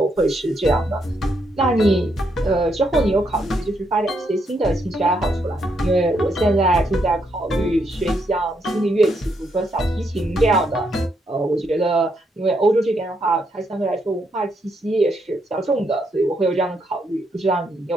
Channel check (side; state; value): both; normal; correlation 0.77